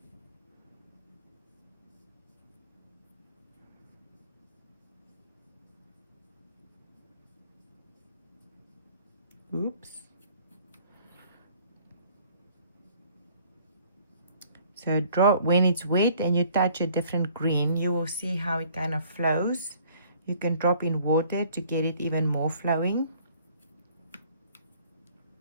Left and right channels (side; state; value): both; inverted; correlation -0.57